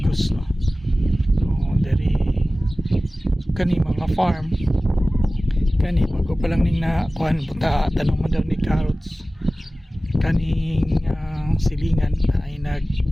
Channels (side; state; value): both; normal; correlation 0.97